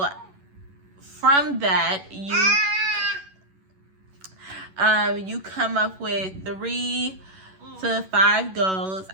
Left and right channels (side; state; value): left; late; 11 ms